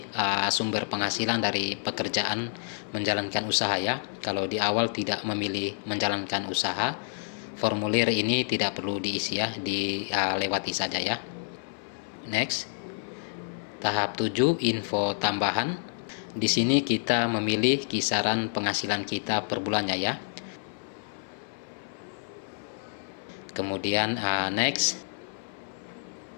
sumber penghasilan dari pekerjaan menjalankan usaha ya. Kalau di awal tidak memilih menjalankan usaha, formulir ini tidak perlu diisi ya, dilewati saja ya. Next. Tahap 7, info tambahan. Di sini kita memilih kisaran penghasilan kita per bulannya ya. Kemudian next.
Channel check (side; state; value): right; silent; 59 dB below the other